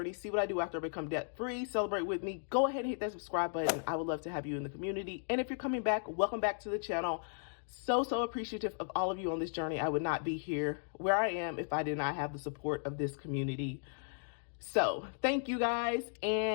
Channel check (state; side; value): silent; right; digital silence